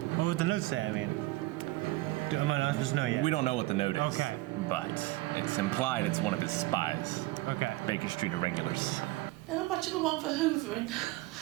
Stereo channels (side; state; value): left; quieter; 19.7 dB